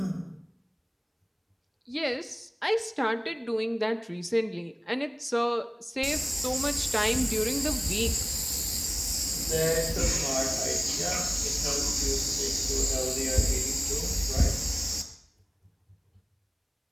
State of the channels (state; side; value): identical; both; correlation 1.00